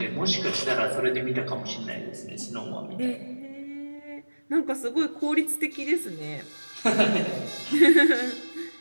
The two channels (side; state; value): both; inverted; correlation -1.00